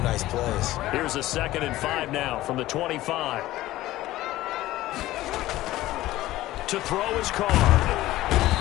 nice plays. Here's a 2nd and 5 now from the 25. To throw his car.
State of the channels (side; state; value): right; quieter; 16.1 dB